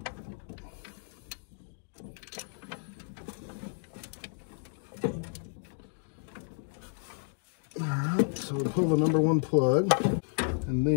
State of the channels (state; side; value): silent; right; digital silence